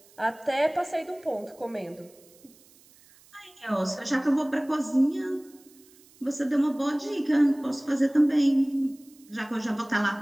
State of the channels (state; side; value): noise; right; hiss, 27 dB below the sound